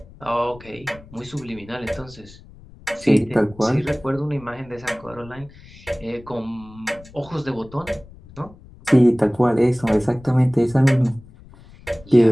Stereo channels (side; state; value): left; noise; rumble, 22 dB below the sound